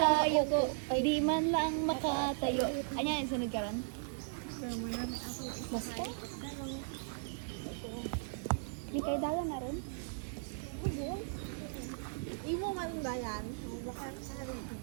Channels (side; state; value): left; silent; digital silence